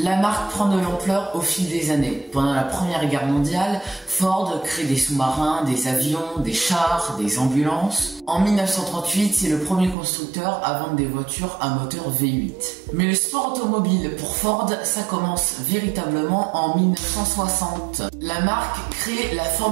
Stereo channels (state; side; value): drops out; left; at 10.0 s